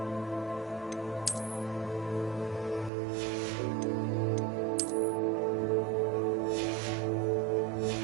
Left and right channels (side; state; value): left; drops out; at 2.9 s